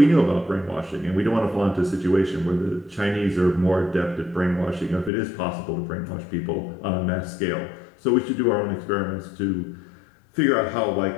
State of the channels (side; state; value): right; drops out; at 5.1 s